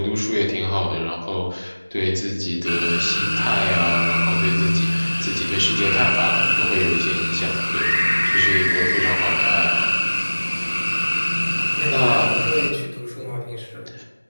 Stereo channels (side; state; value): both; inverted; correlation -1.00